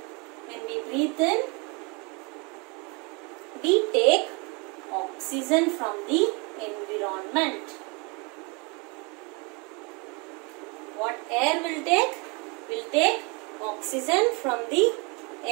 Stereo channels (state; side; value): quieter; left; 30.5 dB